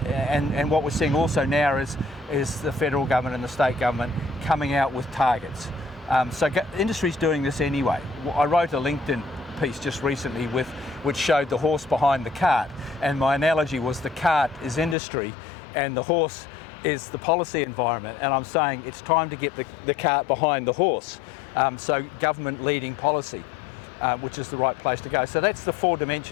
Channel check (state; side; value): drops out; right; at 15.0 s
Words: what we're seeing also now is the federal government and the state government coming out with targets. So industry's doing this anyway. I wrote a LinkedIn piece just recently which showed the horse behind the cart, and my analogy was the cart is industry and the horse is the policy environment, and I'm saying it's time to get the cart behind the horse. So government leading policy, which is the right place to go. So that's the 4